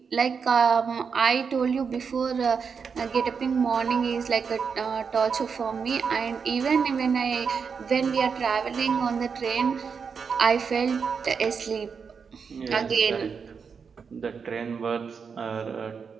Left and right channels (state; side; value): quieter; left; 6.0 dB